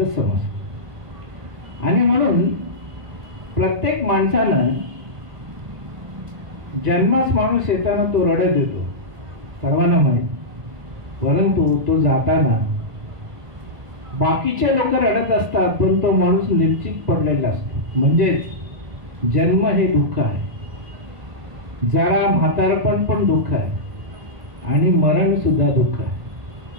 समजतं. आणि म्हणून प्रत्येक माणसानं जन्मास माणूस येताना तो रडत येतो, सर्वांना माहीत. परंतु तो जाताना बाकीचे लोक रडत असतात पण तो माणूस निश्चित पडलेला असतो. म्हणजेच जन्म हे दुःख आहे, जरा म्हातारपण पण दुःख आहे आणि मरण सुद्धा दुःख आहे.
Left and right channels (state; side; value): late; left; 1.4 ms